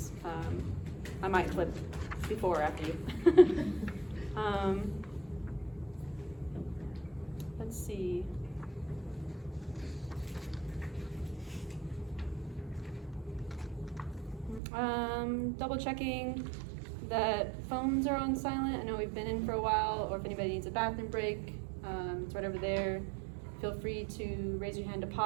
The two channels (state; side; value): drops out; left; at 14.6 s